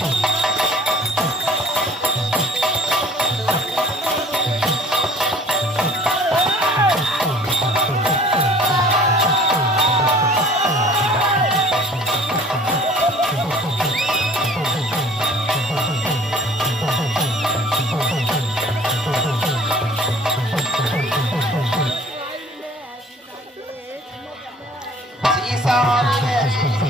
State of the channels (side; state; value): both; normal; correlation 0.51